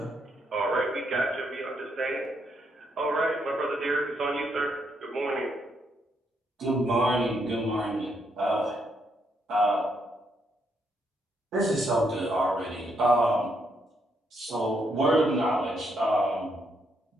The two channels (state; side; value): normal; both; correlation 0.76